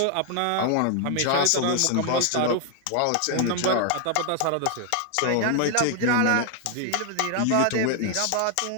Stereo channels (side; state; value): both; different; correlation 0.00